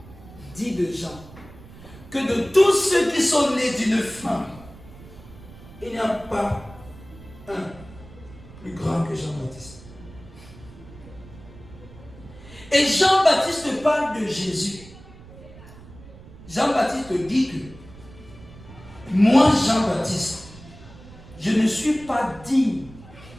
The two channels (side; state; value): right; noise; rumble, 19 dB below the sound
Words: dit de Jean, que de tous ceux qui sont nés d'une femme, il n'y a pas un plus grand que Jean-Baptiste. Et Jean-Baptiste parle de Jésus. Jean-Baptiste dit que moi, Jean-Baptiste, je ne suis pas digne